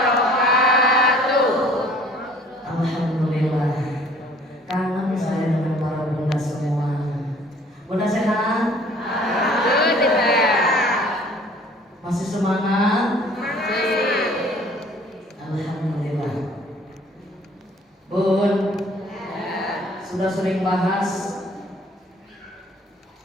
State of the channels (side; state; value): both; normal; correlation 0.54